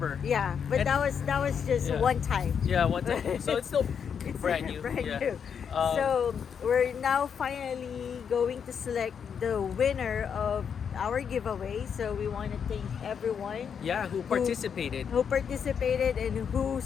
Yeah, but And- that was just one time. Yeah, one time. So it's still It's brand new. brand Yeah. new. So we're now finally going to select the winner of our giveaway. So we want to thank everyone Yeah, who participated. who participated and who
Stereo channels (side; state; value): right; quieter; 7.2 dB